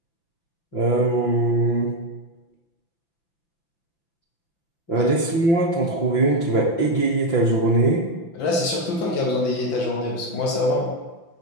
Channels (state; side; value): late; right; 5.9 ms